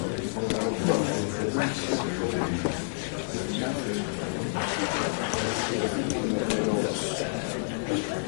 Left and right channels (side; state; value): right; silent; 59 dB below the other